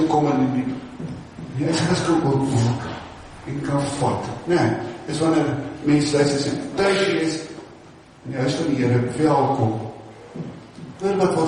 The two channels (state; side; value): identical; both; correlation 1.00